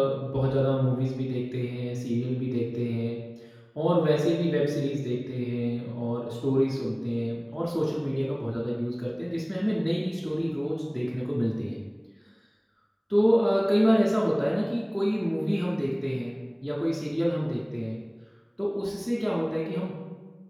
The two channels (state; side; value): identical; both; correlation 1.00